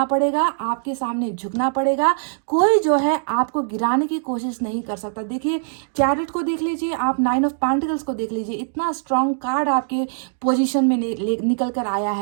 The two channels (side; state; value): left; silent; digital silence